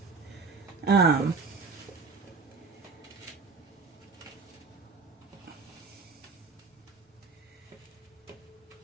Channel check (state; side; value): quieter; left; 4.6 dB